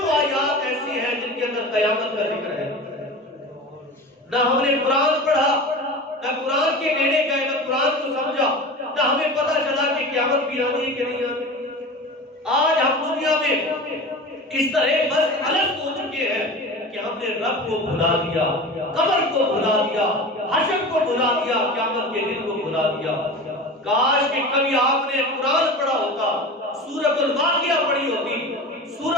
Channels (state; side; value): normal; both; correlation 0.32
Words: آیات ایسی ہیں جن کے اندر قیامت کا ذکر ہے۔ نہ ہم نے قرآن پڑھا، نہ قرآن کے نیڑے گئے، نہ قرآن کو سمجھا، نہ ہمیں پتہ چلا کہ قیامت بھی آنی ہے کہ نہیں آنی۔ آج ہم دنیا میں اس طرح بس الگ ہو چکے ہیں کہ ہم نے رب کو بھلا دیا، قبر کو بھلا دیا، حشر کو بھلا دیا، قیامت کے دن کو بھلا دیا۔ کاش کہ کبھی آپ نے قرآن پڑھا ہوتا، سورۃ الواقعہ پڑھی ہوتی،